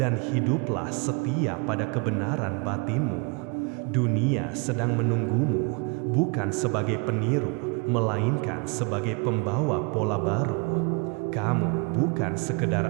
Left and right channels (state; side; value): quieter; left; 32.0 dB